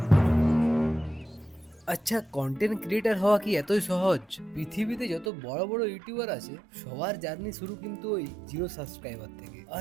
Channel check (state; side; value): drops out; left; at 5.3 s